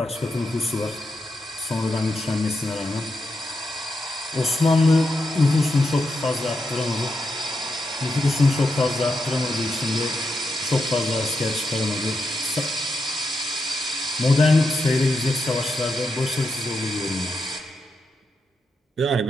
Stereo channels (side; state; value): both; normal; correlation 0.86